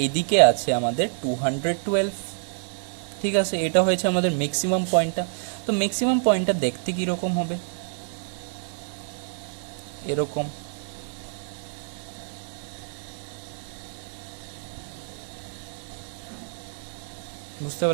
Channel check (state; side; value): silent; left; 60 dB below the other